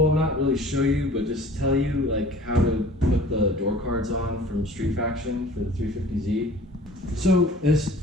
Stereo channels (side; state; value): both; normal; correlation 0.46